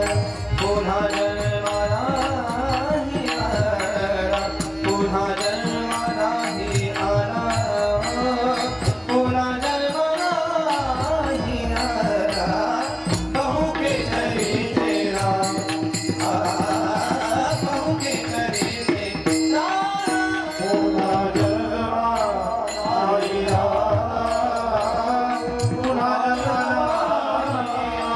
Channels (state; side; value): identical; both; correlation 1.00